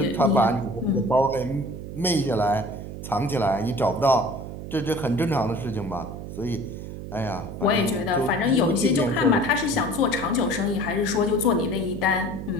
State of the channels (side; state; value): right; noise; hum, 9 dB below the sound